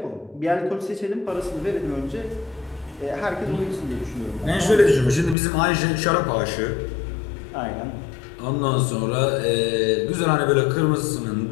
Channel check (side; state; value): right; drops out; at 5.4 s